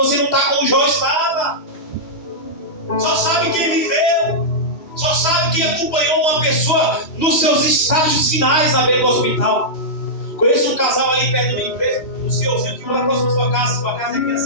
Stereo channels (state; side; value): late; right; 2.9 ms